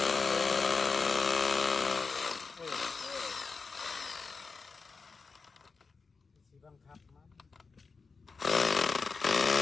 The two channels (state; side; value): quieter; right; 4.7 dB